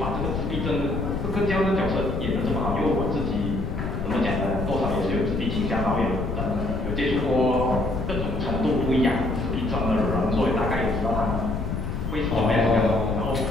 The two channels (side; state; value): left; noise; rumble, 3 dB below the sound